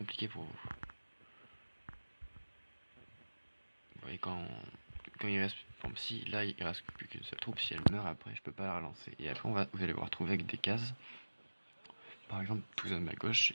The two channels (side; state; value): both; inverted; correlation -1.00